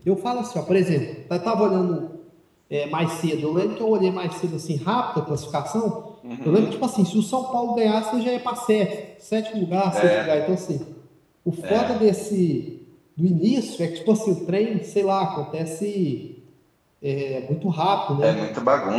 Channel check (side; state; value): both; identical; correlation 1.00